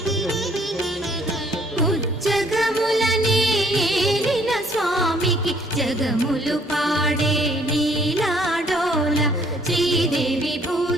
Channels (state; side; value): normal; both; correlation 0.62